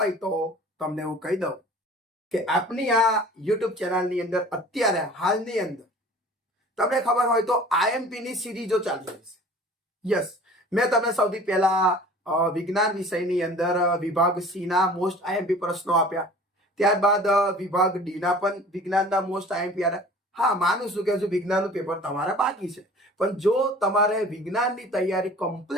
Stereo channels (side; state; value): both; normal; correlation 0.45